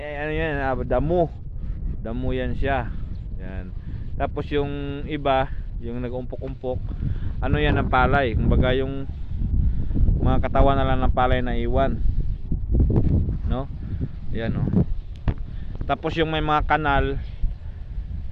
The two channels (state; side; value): identical; both; correlation 1.00